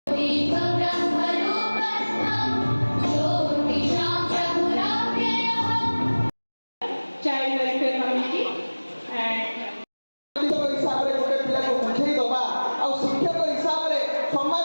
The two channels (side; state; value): both; inverted; correlation -1.00